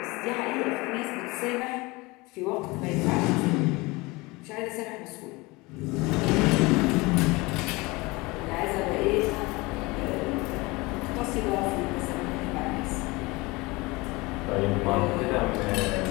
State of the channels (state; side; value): quieter; right; 23.7 dB